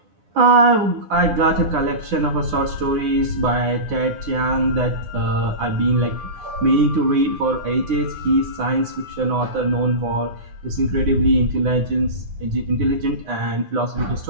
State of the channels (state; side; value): late; left; 9.6 ms